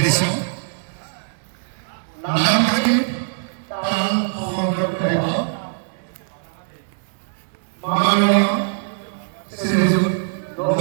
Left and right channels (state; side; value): silent; left; digital silence